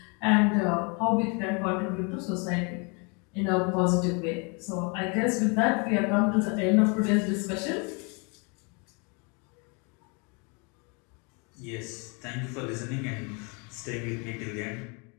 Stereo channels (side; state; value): right; quieter; 32.9 dB